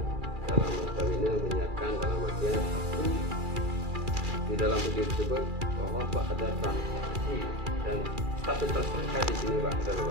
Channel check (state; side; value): late; left; 2.4 ms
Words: dalam notabene menyiarkan dalam artian di dalam video tersebut bahwa Pak ada transaksi dan status tersangka di sini Pak.